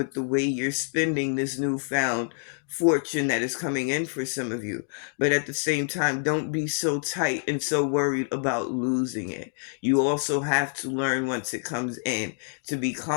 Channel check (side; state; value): right; silent; 58 dB below the other